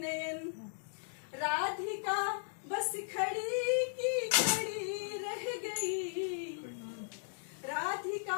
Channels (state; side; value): silent; right; digital silence